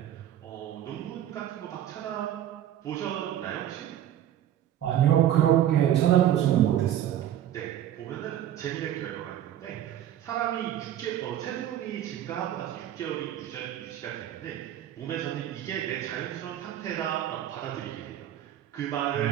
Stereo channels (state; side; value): quieter; left; 11.4 dB